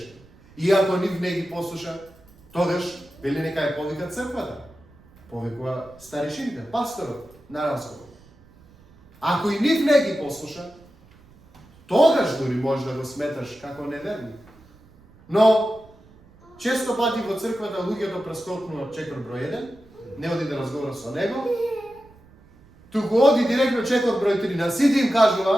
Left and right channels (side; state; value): right; noise; rumble, 26 dB below the sound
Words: И ако нив не ги послуша, тогаш вели нека ја повика црквата. Повикува старешините, пасторот на разговор. Ако и нив не ги послуша, тогаш дури може да го сметаш како неверник. Но често пати во црквата луѓето прескокнуваат чекор број 1, не оди да разговара со него, туку оди директно чекор број 3, на сите им